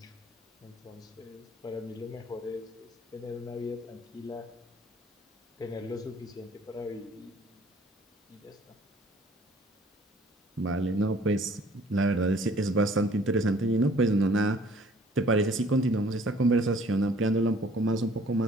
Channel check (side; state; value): both; normal; correlation 0.56